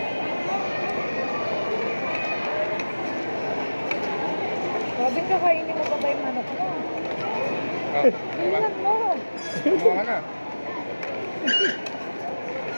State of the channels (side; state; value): both; inverted; correlation -1.00